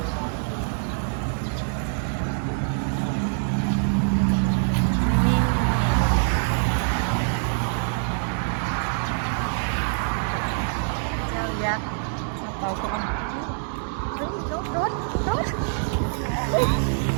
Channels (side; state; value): left; silent; digital silence